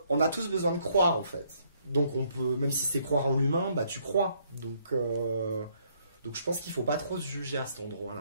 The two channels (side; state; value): both; inverted; correlation -0.68